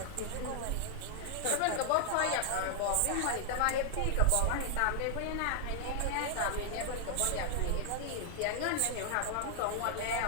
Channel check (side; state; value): both; different; correlation 0.00